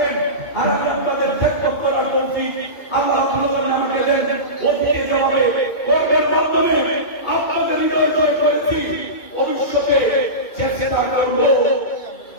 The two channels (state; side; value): late; right; 2.5 ms